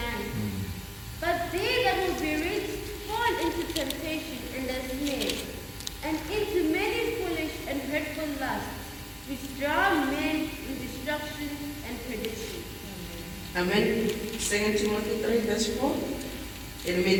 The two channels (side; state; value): both; identical; correlation 1.00